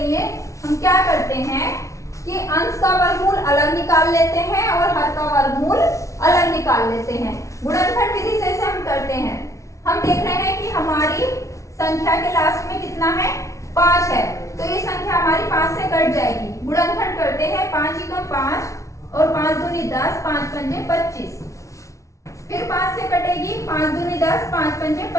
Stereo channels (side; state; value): right; late; 0.15 ms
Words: हम क्या करते हैं कि अंश का वर्गमूल अलग निकाल लेते हैं और हर का वर्गमूल अलग निकाल लेते हैं। गुणनखंड विधि से इसे हम करते हैं। हम देख रहे हैं कि हमारी संख्या के लास्ट में कितना है? 5 है। तो ये संख्या हमारी 5 से कट जाएगी। गुणनखंड करते हैं, 5 × 5 और 5 दूनी 10, 5 पंजे 25। फिर 5 से कटेगी, 5 दूनी 10, 5 पंजे